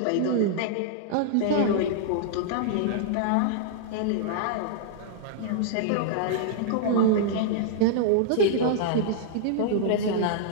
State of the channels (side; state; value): both; different; correlation -0.01